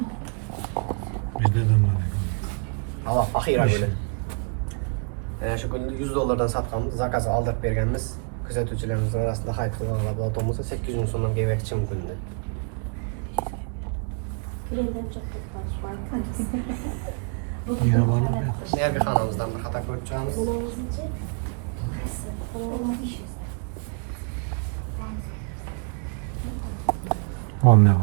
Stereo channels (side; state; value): left; quieter; 38.3 dB